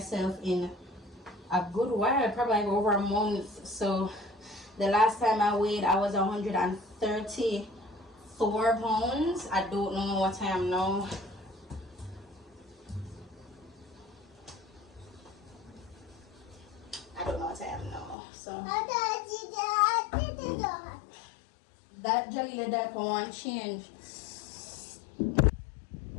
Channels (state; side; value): drops out; right; at 18.2 s